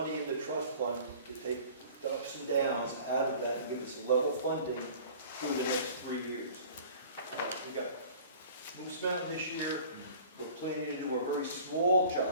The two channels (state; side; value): inverted; both; correlation -0.46